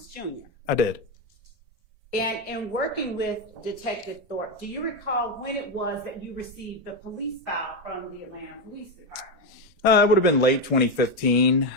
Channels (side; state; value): both; normal; correlation 0.09